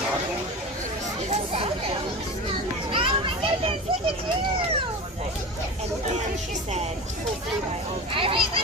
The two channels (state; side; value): normal; both; correlation 0.30